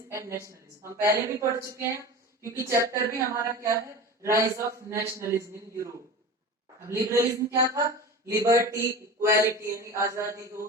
एंड नेशनलिज्म. हम पहले भी पढ़ चुके हैं क्योंकि चैप्टर भी हमारा क्या है, rise of nationalism in Europe. अब लिबरलिज्म क्या था, लिबर्टी, इक्वालिटी यानी आजादी हो,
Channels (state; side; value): normal; both; correlation 0.32